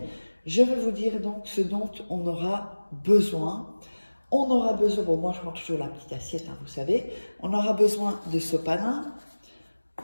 Je vais vous dire donc ce dont on aura besoin. On aura besoin, bon moi je prends toujours la petite assiette, hein, vous savez, on aura besoin de sopalin,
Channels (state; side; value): inverted; both; correlation -1.00